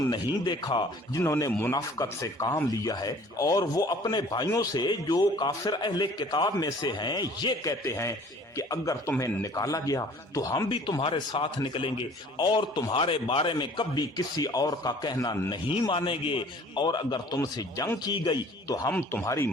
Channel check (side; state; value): both; normal; correlation 0.51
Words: देखा जिन्होंने मुनाफिकत से काम लिया है, और वो अपने भाइयों से जो काफिर अहले किताब में से हैं ये कहते हैं कि अगर तुम्हें निकाला गया तो हम भी तुम्हारे साथ निकलेंगे, और तुम्हारे बारे में कभी किसी और का कहना नहीं मानेंगे, और अगर तुमसे जंग की गई तो हम तुम्हारी